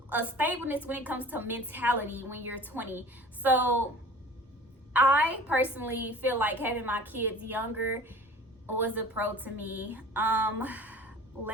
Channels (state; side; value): normal; both; correlation 0.43